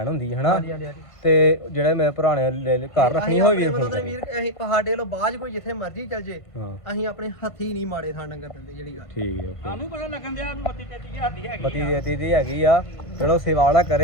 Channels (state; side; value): late; right; 1.5 ms